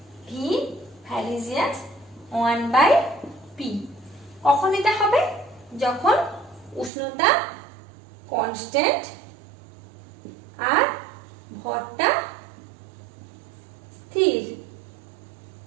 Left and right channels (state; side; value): drops out; left; at 6.9 s